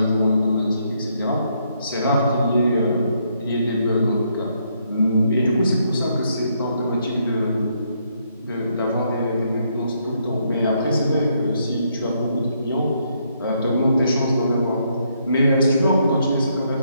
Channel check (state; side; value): inverted; both; correlation -0.74